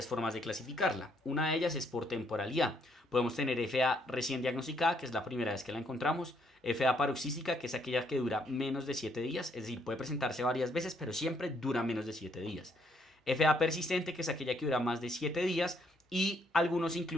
formas de clasificarla. Una de ellas es por temporalidad. Podemos tener FA recién diagnosticada, que es la primera vez que la encontramos. FA paroxística, que es aquella que dura menos de 7 días. Es decir, puede presentarse varias veces, pero siempre dura menos de 7 días. FA persistente, que es aquella que dura más de 7 días, y algunos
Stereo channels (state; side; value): normal; both; correlation 0.71